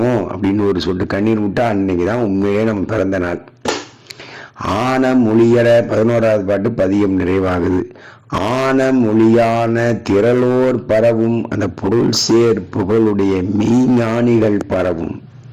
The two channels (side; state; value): both; identical; correlation 1.00